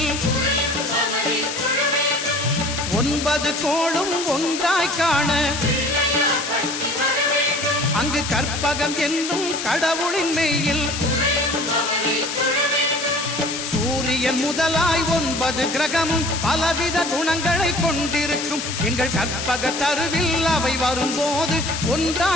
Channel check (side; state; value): left; noise; hiss, 5 dB below the sound